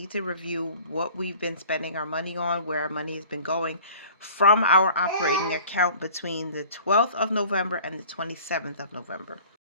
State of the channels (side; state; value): both; inverted; correlation -0.47